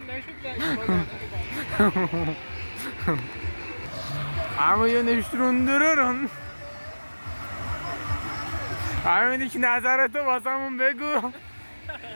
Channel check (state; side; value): inverted; both; correlation -1.00